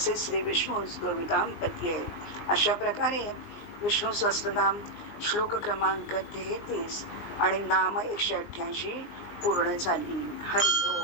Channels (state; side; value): late; right; 19 ms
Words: श्री विष्णू गोविदांपती आहे. अशा प्रकारे विष्णू सहस्त्रनाम श्लोक क्रमांक 33 आणि नाम 188 पूर्ण झाली. हरी.